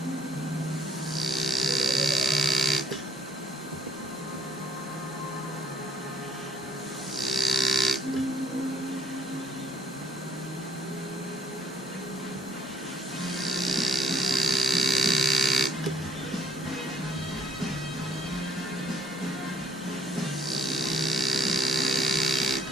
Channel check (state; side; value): normal; both; correlation 0.67